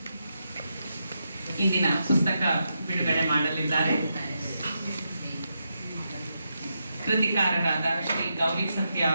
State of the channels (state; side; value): inverted; both; correlation -0.84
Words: ಇಂದಿನ ಪುಸ್ತಕ ಬಿಡುಗಡೆ ಮಾಡಲಿದ್ದಾರೆ. ಕೃತಿಕಾರರಾದ ಶ್ರೀ ಗೌರಿ ಸತ್ಯ